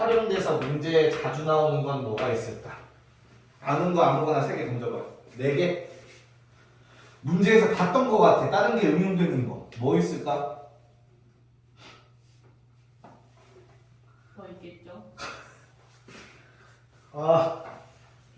문제에 자주 나오는 건 뭐가 있을까? 아는 거 아무거나 3개 던져봐. 4개? 문제에서 봤던 거 같아. 다른 게 응용되는 거. 뭐 있을까? 뭐 있겠죠? 아,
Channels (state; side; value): identical; both; correlation 1.00